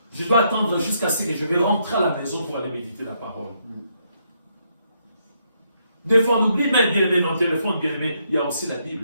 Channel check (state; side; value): inverted; both; correlation -0.76